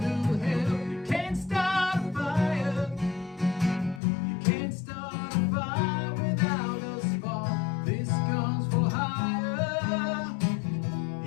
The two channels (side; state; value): right; drops out; at 4.0 s